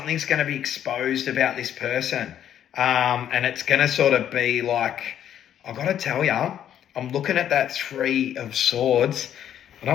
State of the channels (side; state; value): right; quieter; 10.2 dB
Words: going to be exposed about this person. And it's going to sort of be like, I've got to tell you, I'm looking at that Three of Swords. I